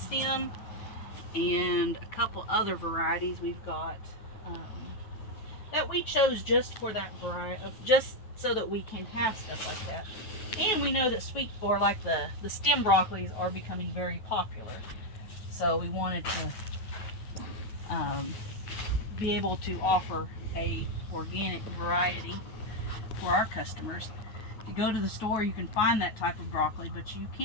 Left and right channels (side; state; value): right; late; 9.3 ms